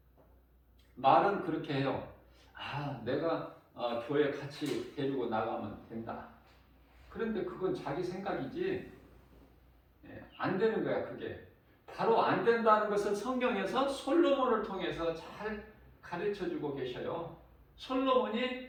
말은 그렇게 해요. 아, 내가 교회 같이 데리고 나가면 된다. 그런데 그건 자기 생각이지 안 되는 거야. 그게 바로 안 된다는 것을 성경에서 솔로몬을 통해서 잘 가르쳐주고 계셔요.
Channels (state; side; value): identical; both; correlation 1.00